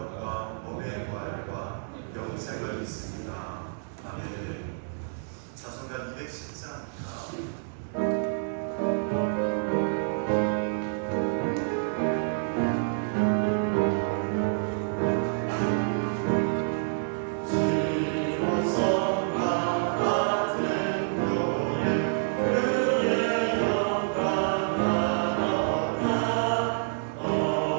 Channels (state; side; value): silent; left; 59 dB below the other